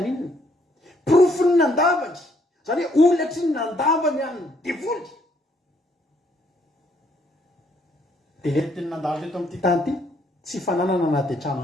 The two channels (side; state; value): both; normal; correlation 0.69